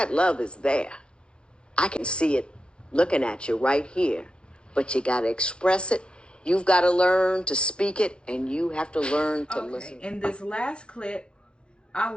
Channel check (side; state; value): right; late; 0.054 ms